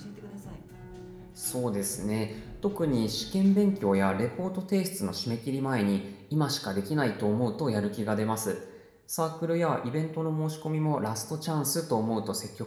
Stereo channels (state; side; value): identical; both; correlation 1.00